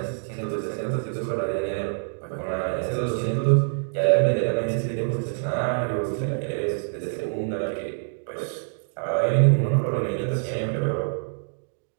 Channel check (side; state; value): left; silent; digital silence